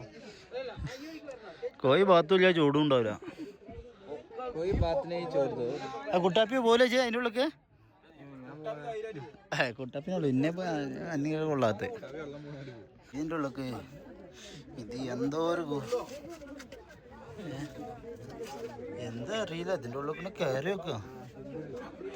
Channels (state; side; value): identical; both; correlation 1.00